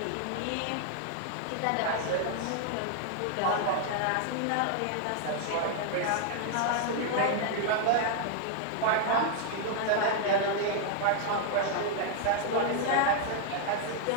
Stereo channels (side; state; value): both; different; correlation -0.01